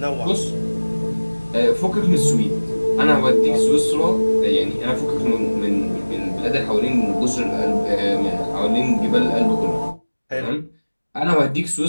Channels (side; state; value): both; inverted; correlation -1.00